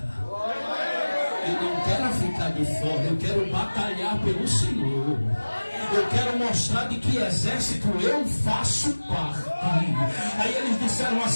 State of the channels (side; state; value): both; inverted; correlation -1.00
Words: Eu não quero ficar de fora, eu quero batalhar pelo Senhor. Eu quero mostrar de que exército eu faço parte. Aí eles disseram